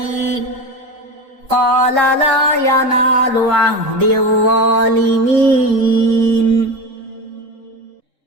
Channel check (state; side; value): late; left; 3.6 ms